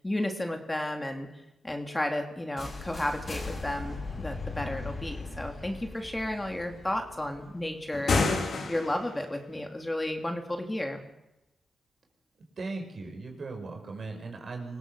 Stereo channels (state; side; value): normal; both; correlation 0.93